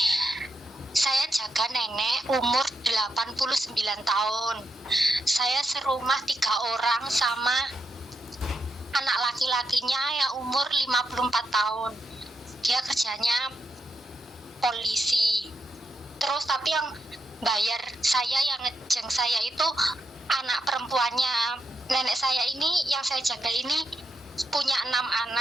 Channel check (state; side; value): normal; both; correlation 0.83